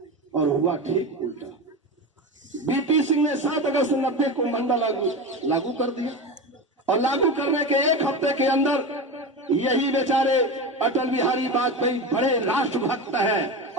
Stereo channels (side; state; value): both; normal; correlation 0.23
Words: और हुआ ठीक उल्टा। BP सिंह ने 7 अगस्त 90 को मंडल लागू कर दिया और लागू करने के 1 हफ्ते के अंदर यही बेचारे अटल बिहारी वाजपेयी बड़े राष्ट्रभक्त हैं